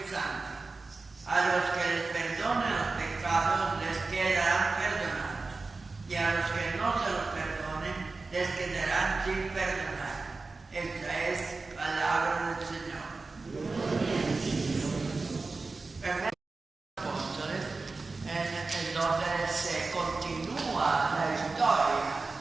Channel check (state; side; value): quieter; left; 3.8 dB